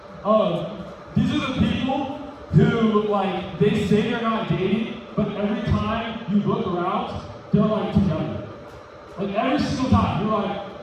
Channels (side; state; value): both; identical; correlation 1.00